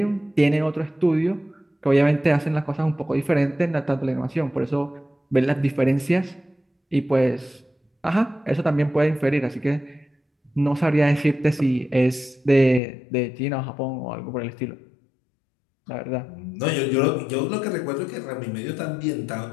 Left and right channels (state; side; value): drops out; right; at 12.8 s